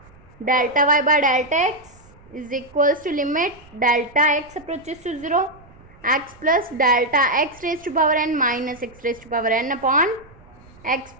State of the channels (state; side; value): noise; right; rumble, 25 dB below the sound